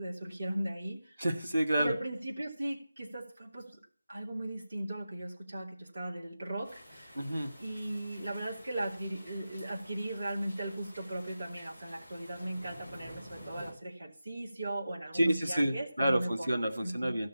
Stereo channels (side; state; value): both; inverted; correlation -0.92